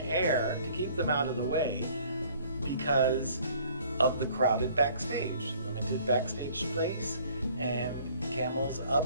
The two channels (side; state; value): both; inverted; correlation -0.56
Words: to keep them out of the way because of the crowded backstage. Limited backstage space and camels up